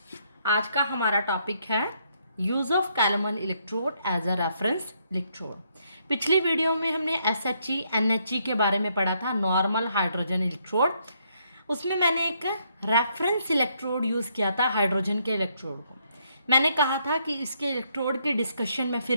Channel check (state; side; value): inverted; both; correlation -0.73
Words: आज का हमारा टॉपिक है use of calomel electrode as a reference electrode. पिछली वीडियो में हमने SHE NHE के बारे में पढ़ा था, नॉर्मल हाइड्रोजन इलेक्ट्रोड। उसमें मैंने एक रेफरेंस इलेक्ट्रोड यूज़ किया था हाइड्रोजन के इलेक्ट्रोड को। मैंने कहा था कि इसके इलेक्ट्रोड के डिस्कशन में